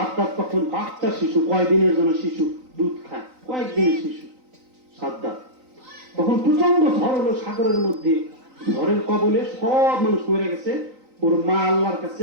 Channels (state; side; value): late; left; 3.9 ms